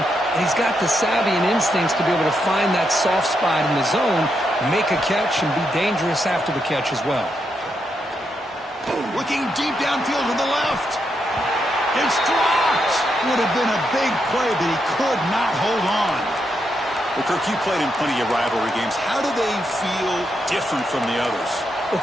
and he's got the savvy and instincts to be able to find that soft spot in the zone, make a catch, and be dangerous after the catch as well. Looking deep downfield to the left. It's dropped. Would have been a big play, but he could not hold on. Well, Kirk, you played in plenty of rivalry games. How do they feel different from the others? Well,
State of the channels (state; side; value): normal; both; correlation 0.82